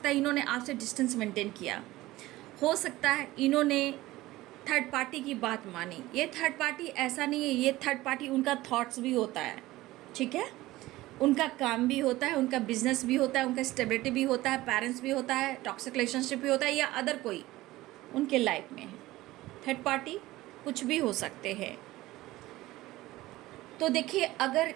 है इन्होंने आपसे डिस्टेंस मेंटेन किया, हो सकता है इन्होंने थर्ड पार्टी की बात मानी। ये थर्ड पार्टी ऐसा नहीं है, ये थर्ड पार्टी उनका थॉट्स भी होता है, ठीक है, उनका काम भी होता है, उनका बिजनेस भी होता है, उनका स्टेबिलिटी भी होता है, पेरेंट्स भी होता है, टॉक्सिक रिलेशनशिप भी होता है, या अदर कोई उनके लाइफ में है। थर्ड पार्टी कुछ भी हो सकते हैं। तो देखिए अगर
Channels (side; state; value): left; quieter; 17.7 dB